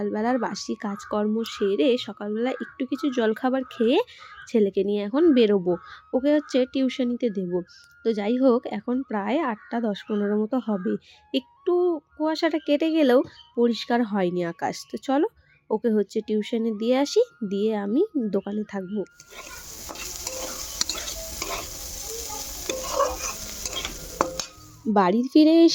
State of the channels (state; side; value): identical; both; correlation 1.00